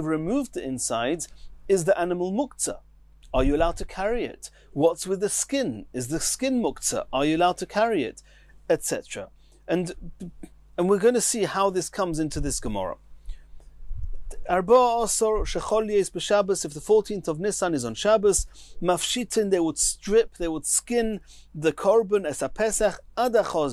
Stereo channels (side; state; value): both; identical; correlation 1.00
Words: removed the insides, is the animal muktzah? Are you allowed to carry it? What's with the skin? Is the skin muktzah? Are you allowed to carry it? Etc. And we're going to see how this comes into this Gemara. Arba Asor Shechol Yes b'Shabbos, if the 14th of Nisan is on Shabbos, Mafshitin, they would strip, they would skin the korban as a Pesach ad